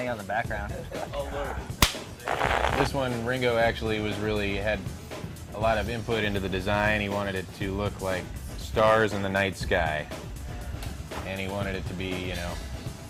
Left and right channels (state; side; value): identical; both; correlation 1.00